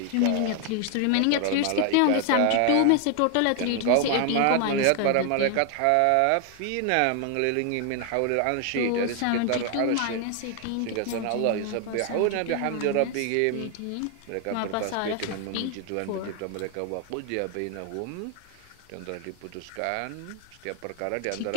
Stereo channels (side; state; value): both; different; correlation 0.00